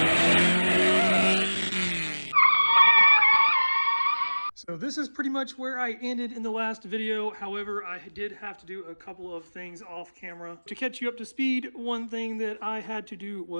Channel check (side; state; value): both; inverted; correlation -1.00